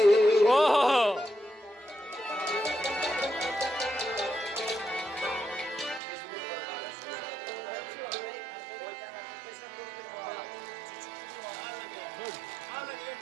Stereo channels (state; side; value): drops out; left; at 6.0 s